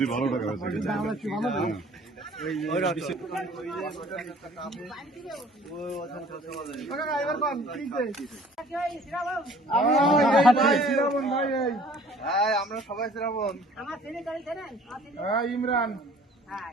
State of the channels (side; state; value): both; normal; correlation 0.52